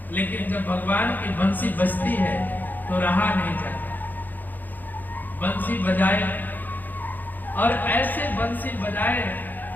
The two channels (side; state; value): right; late; 0.086 ms